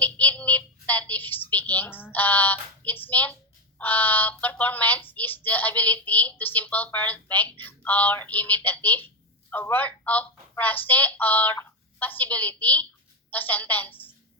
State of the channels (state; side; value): normal; both; correlation 0.11